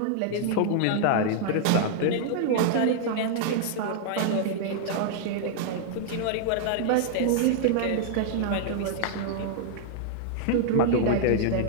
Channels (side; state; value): both; different; correlation -0.01